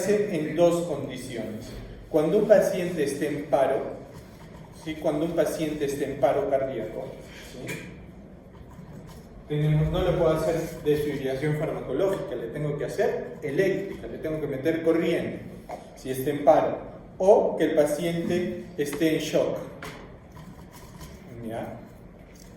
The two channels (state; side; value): identical; both; correlation 1.00